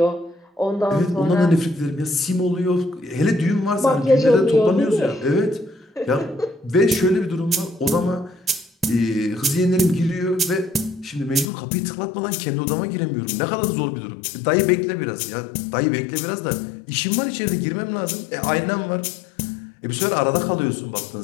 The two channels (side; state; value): right; drops out; at 11.5 s